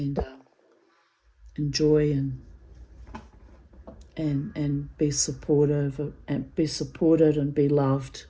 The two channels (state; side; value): identical; both; correlation 1.00